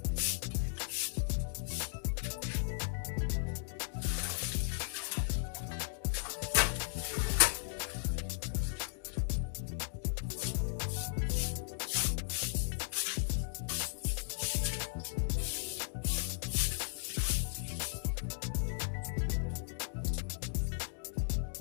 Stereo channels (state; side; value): silent; right; digital silence